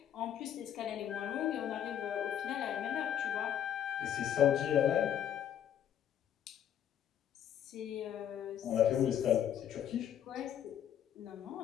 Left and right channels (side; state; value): right; quieter; 10.0 dB